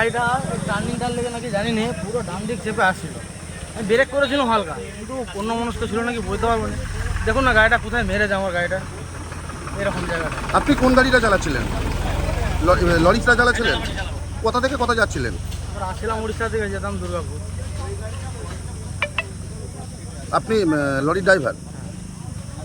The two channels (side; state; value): both; identical; correlation 1.00